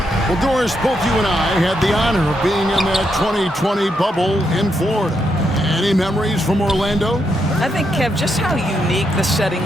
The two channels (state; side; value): normal; both; correlation 0.80